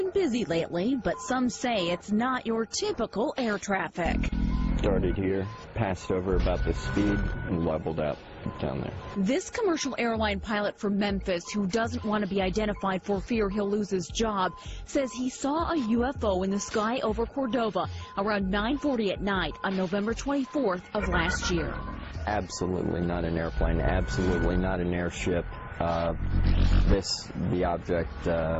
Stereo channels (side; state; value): both; identical; correlation 1.00